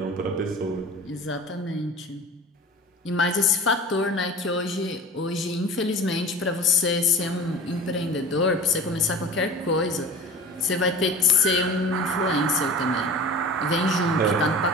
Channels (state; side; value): normal; both; correlation 0.38